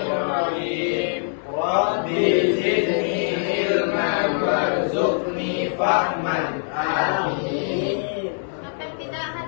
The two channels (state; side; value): silent; right; 63 dB below the other